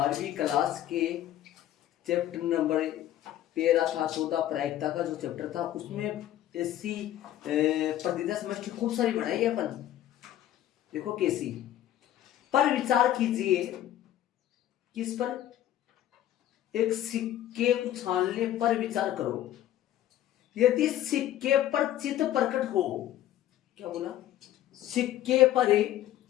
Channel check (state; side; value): quieter; right; 12.5 dB